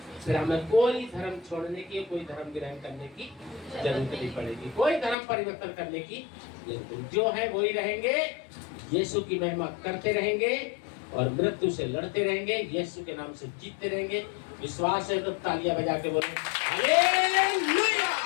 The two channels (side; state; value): right; drops out; at 5.2 s